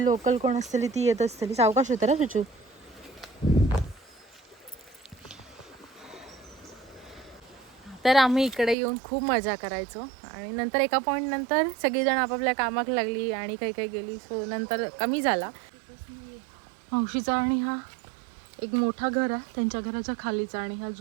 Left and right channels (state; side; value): drops out; left; at 8.8 s